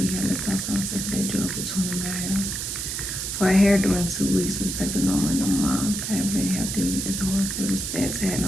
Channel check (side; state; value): right; noise; hiss, 3 dB below the sound